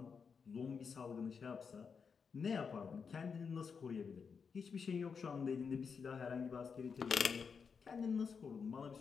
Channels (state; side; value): quieter; right; 5.9 dB